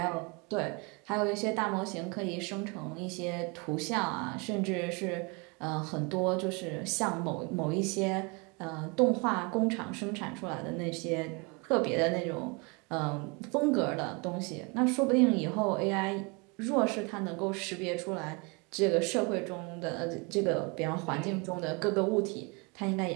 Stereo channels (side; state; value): left; quieter; 30.4 dB